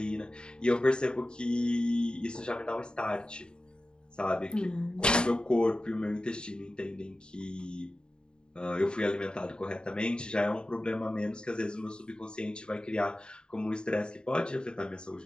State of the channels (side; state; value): right; late; 0.049 ms